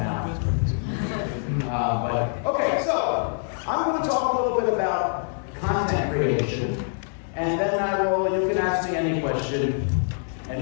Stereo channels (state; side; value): silent; right; digital silence